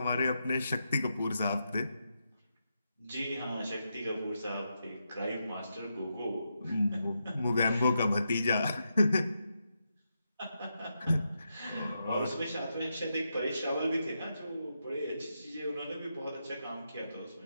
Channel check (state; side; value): inverted; both; correlation -0.84